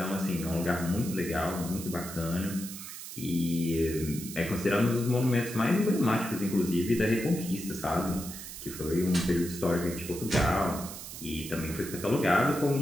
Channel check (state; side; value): noise; right; hiss, 11 dB below the sound